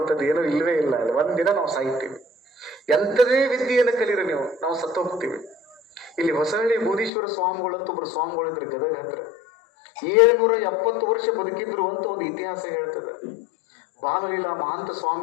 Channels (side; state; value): right; drops out; at 7.1 s